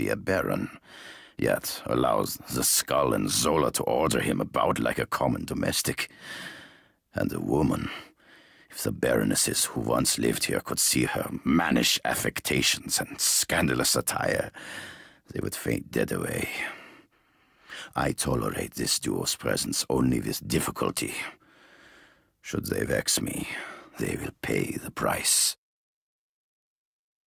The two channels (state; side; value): identical; both; correlation 1.00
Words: a baron, yet allows the Skull and Zola to order him about like a common domestic. And a woman. If the baronesses who once lived here could see her mannish affectations and scandalous attire, they would faint dead away. I tolerate this duo's presence only with difficulty. Should they vex me, they will pay the price.